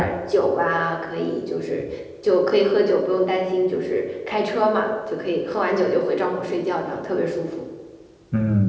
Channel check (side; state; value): both; identical; correlation 1.00